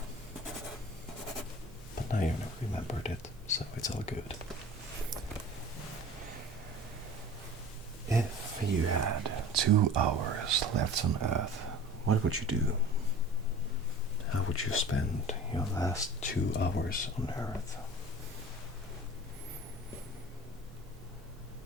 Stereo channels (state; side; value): normal; both; correlation 0.41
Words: But now you remembered it, so it's all good. If you had 2 hours left on Earth, what would you do? How would you spend your last 2 hours on Earth?